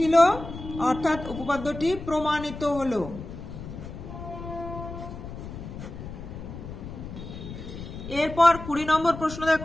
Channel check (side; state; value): left; noise; rumble, 10 dB below the sound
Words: অর্থাৎ উপপাদ্যটি প্রমাণিত হলো। এরপর 20 নম্বর প্রশ্ন